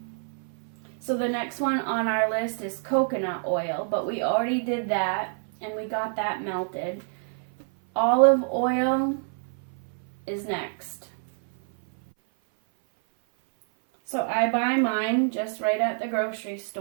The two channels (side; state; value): left; silent; 57 dB below the other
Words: So the next one on our list is coconut oil, but we already did that and we got that melted. Olive oil is next. So I buy mine just right at the grocery